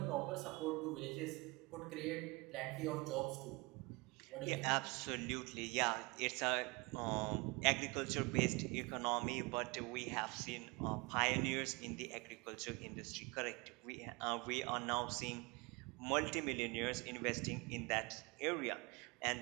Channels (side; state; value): left; quieter; 26.5 dB